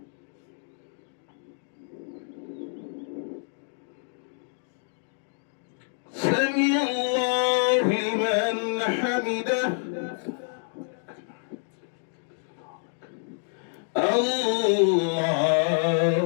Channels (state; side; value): silent; right; digital silence